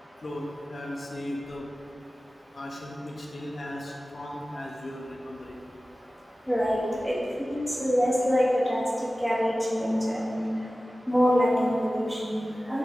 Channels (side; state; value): both; normal; correlation 0.96